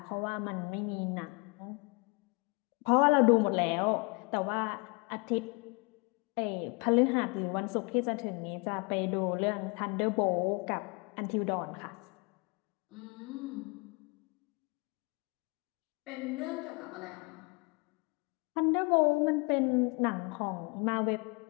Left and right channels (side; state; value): right; quieter; 30.8 dB